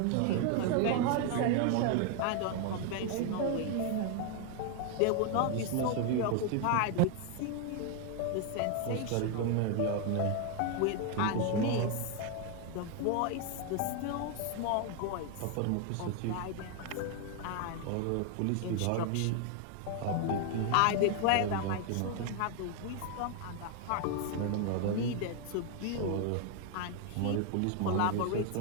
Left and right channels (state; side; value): different; both; correlation 0.01